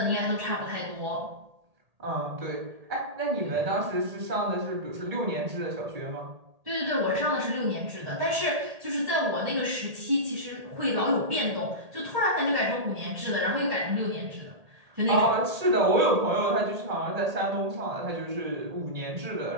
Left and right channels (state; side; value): late; left; 1.8 ms